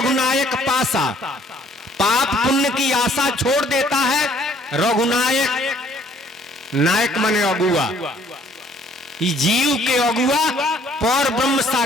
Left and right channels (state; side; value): normal; both; correlation 0.60